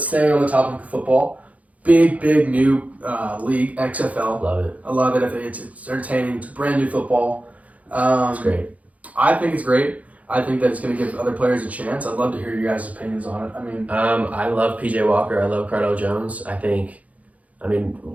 staying on the topic of football, big new league, XFL. Love it. I love it. I think it's entertaining. It's brand new football. It's great. I think it's great. I think that it's going to give other players a chance. I'd love to hear your guys' opinions on it. I mean, I love PJ Walker. I love Cardell Jones. What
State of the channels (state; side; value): late; left; 0.069 ms